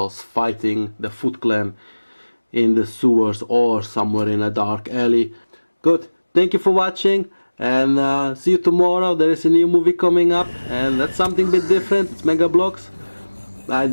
fighting the Foot Clan in the sewers or somewhere in a dark alley. Good, thank you for watching, and see you tomorrow. There is a new movie coming up, and that's something a bit different. It's Mega Blocks. I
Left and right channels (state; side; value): inverted; both; correlation -1.00